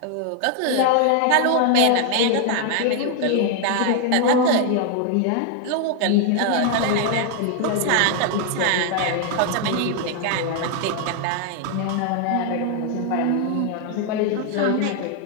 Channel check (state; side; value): different; both; correlation 0.00